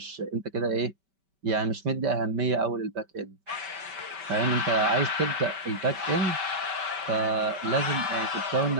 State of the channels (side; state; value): left; late; 5.2 ms